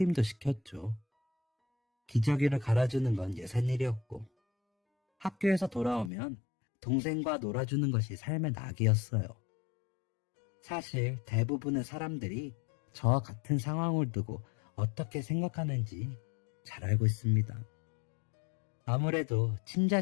시켰죠. 기저귀를 갈아주는 건 예산일이었고, 학교에서 돌아오면 동생과 놀아주는 것이 삶의 낙이었어요. 사실 대부분의 사람들이 저와 같은 상황을 두고 어떻게 생각하는지 잘 알고 있습니다. 아무래도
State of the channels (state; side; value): drops out; right; at 6.1 s